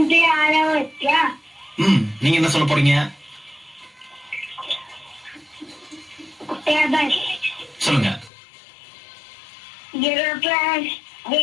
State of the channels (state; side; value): drops out; right; at 8.3 s